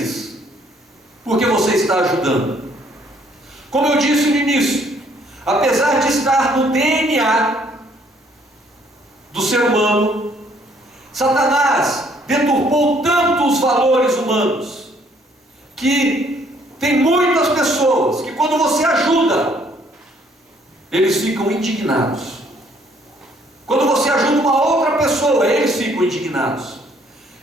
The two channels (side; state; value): both; normal; correlation 0.64